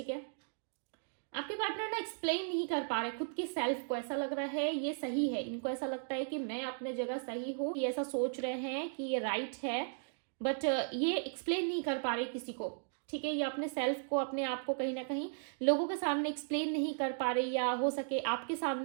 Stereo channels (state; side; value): silent; left; digital silence